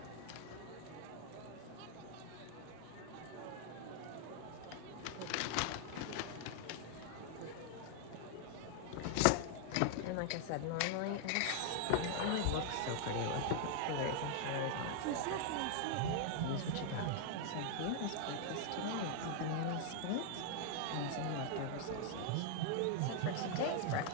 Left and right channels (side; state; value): both; different; correlation 0.00